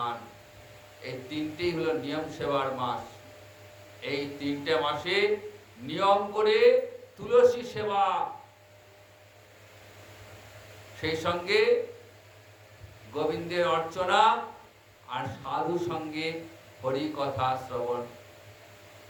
এই 3টেই হলো নিয়ম সেবার মাস। এই 3টে মাসে নিয়ম করে তুলসী সেবা, সেই সঙ্গে গোবিন্দের অর্চনা, আর সাধু সঙ্গে হরি কথা শ্রবণ।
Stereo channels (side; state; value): both; identical; correlation 1.00